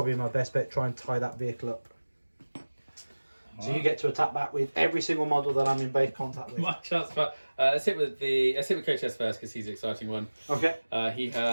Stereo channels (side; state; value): both; inverted; correlation -1.00